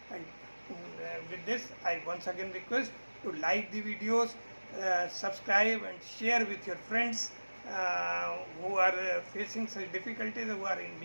And with this, I once again request to like the videos, subscribe and share with your friends who are facing such difficulties, who are in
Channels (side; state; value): both; inverted; correlation -1.00